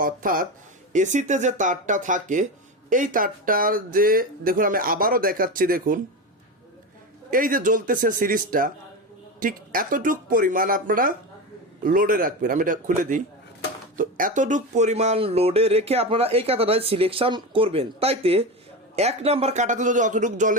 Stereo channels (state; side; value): normal; both; correlation 0.20